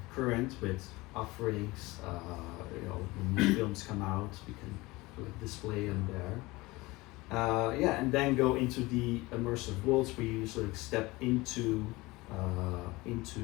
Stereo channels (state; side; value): quieter; right; 21.7 dB